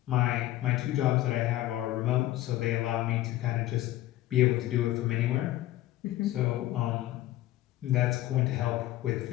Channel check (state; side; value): quieter; right; 15.2 dB